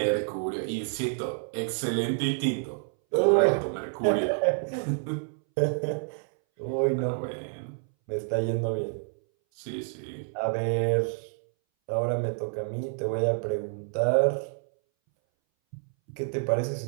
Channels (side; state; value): left; silent; 59 dB below the other